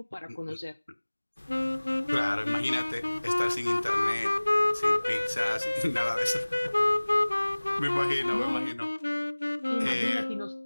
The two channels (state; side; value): inverted; both; correlation -1.00